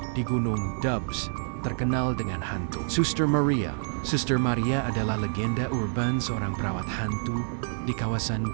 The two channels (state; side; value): silent; left; 60 dB below the other